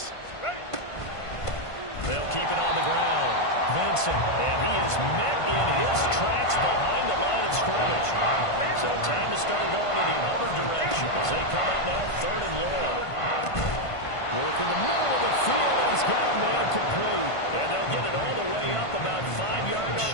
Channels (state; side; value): late; right; 1.5 ms